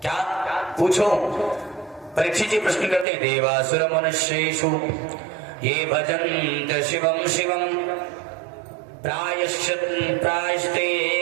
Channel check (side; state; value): left; drops out; at 3.1 s